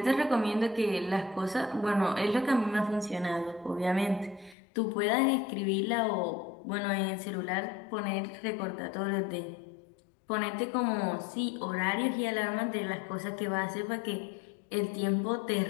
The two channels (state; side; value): drops out; right; at 4.5 s